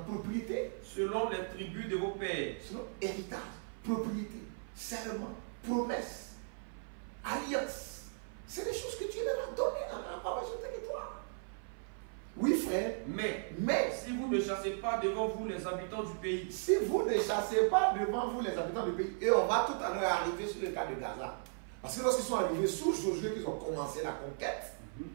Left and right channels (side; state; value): left; silent; 53 dB below the other